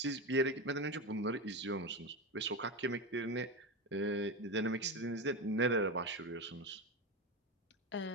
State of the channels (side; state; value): both; normal; correlation 0.18